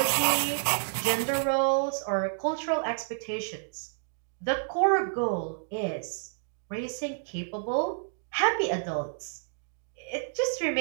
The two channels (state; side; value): silent; left; digital silence